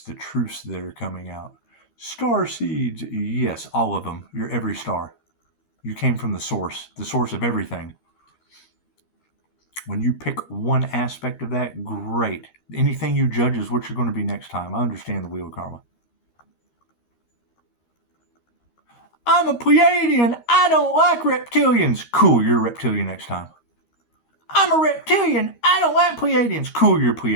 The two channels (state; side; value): late; right; 13 ms